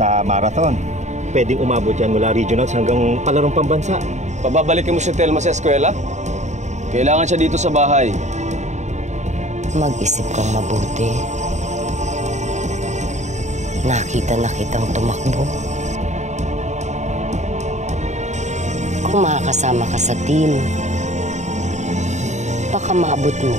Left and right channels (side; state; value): left; late; 0.34 ms